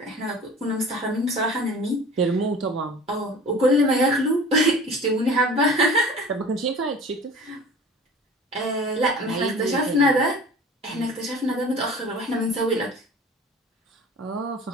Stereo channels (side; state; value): both; normal; correlation 0.42